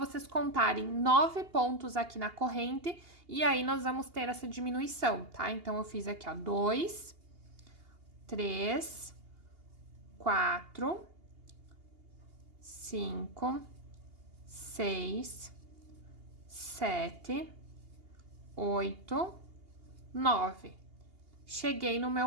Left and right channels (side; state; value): left; late; 2.8 ms